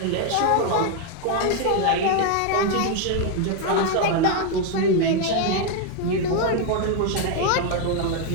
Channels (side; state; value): both; different; correlation 0.01